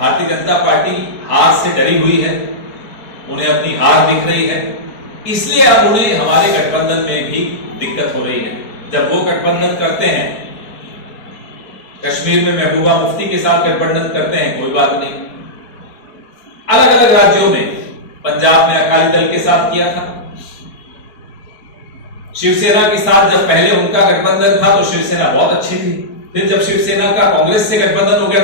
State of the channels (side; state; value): right; late; 4.6 ms